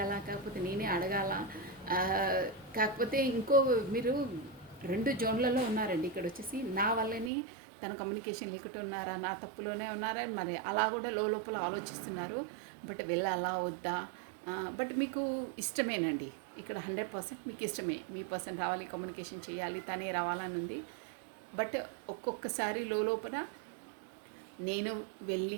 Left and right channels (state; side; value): drops out; left; at 7.3 s